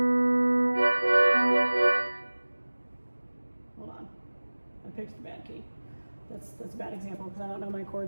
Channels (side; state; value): both; inverted; correlation -1.00